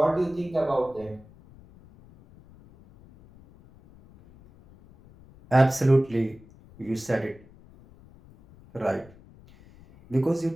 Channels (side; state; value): left; noise; rumble, 24 dB below the sound